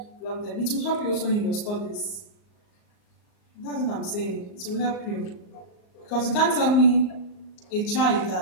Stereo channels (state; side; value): late; right; 38 ms